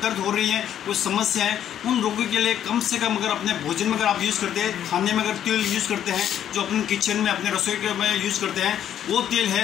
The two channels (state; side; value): quieter; right; 10.3 dB